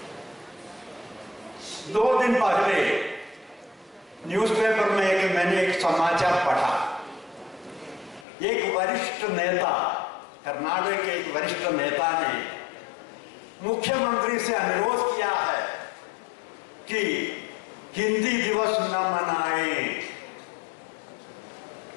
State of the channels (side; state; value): right; drops out; at 8.2 s